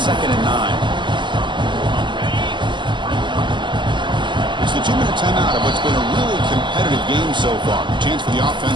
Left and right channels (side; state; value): left; late; 0.23 ms